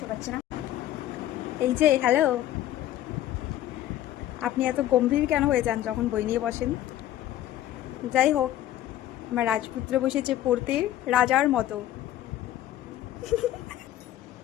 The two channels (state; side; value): quieter; right; 13.0 dB